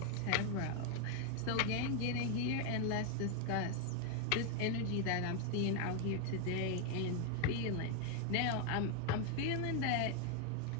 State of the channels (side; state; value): both; different; correlation 0.00